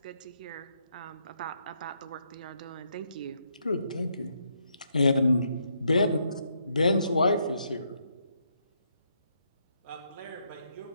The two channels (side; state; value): both; inverted; correlation -0.76